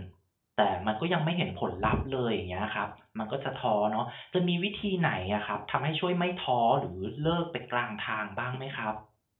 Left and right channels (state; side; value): identical; both; correlation 1.00